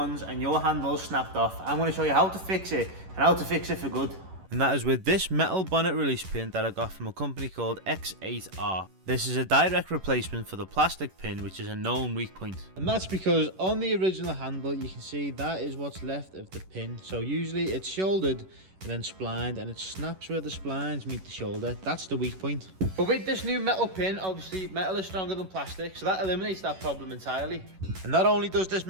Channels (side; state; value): left; late; 11 ms